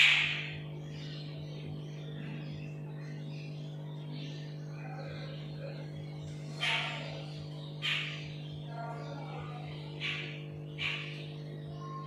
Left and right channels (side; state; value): both; identical; correlation 1.00